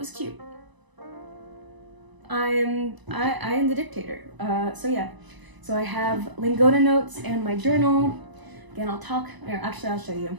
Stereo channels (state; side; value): late; left; 1.0 ms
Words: cute. I am the dictator. So yeah, so I have Lingoda notes and my journal. Again, I'll show you.